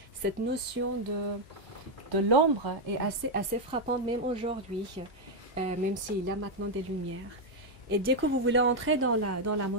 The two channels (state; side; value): normal; both; correlation 0.01